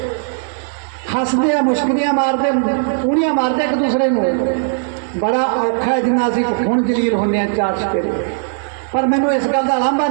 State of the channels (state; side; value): silent; left; digital silence